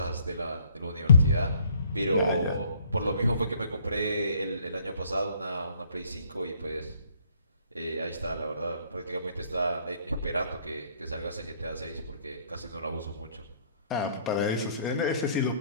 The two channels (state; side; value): inverted; both; correlation -0.62